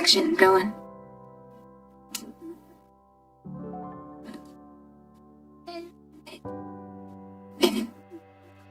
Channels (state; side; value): identical; both; correlation 1.00